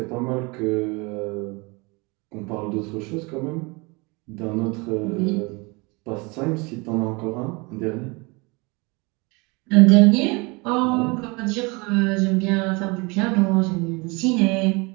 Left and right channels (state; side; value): quieter; left; 27.4 dB